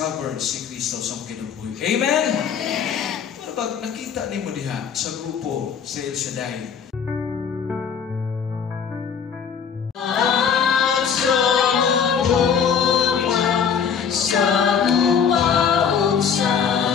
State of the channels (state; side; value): quieter; right; 7.1 dB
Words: si Kristo sa kinabuhi. Amen? Amen! Pero pag nakita ni mo diha sa grupo sa El Shaddai, Amen.